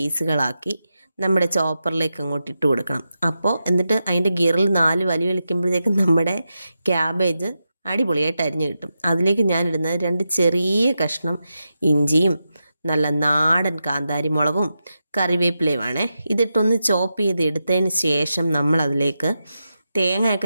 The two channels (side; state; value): both; inverted; correlation -0.89